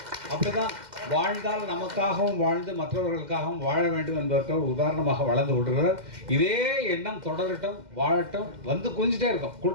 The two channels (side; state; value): left; late; 2.1 ms